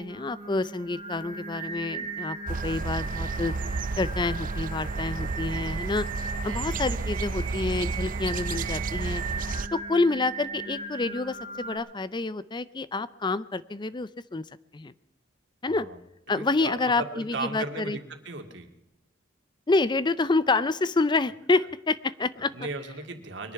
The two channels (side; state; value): both; normal; correlation 0.46